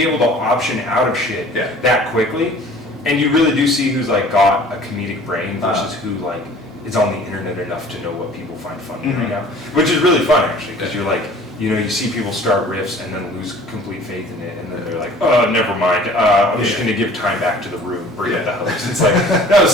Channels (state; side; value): normal; both; correlation 0.49